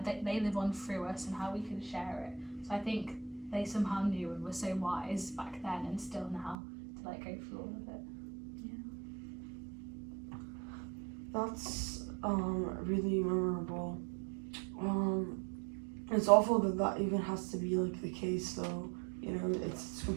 they live on through us, and how we can share it. So I think they somehow knew and were so wise back then, and still now, to like go through all of it. That's really memorable. It's awful that even has to be like the case, though. It's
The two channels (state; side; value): drops out; left; at 6.6 s